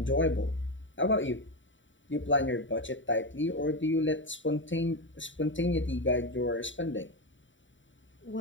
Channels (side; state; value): right; late; 0.55 ms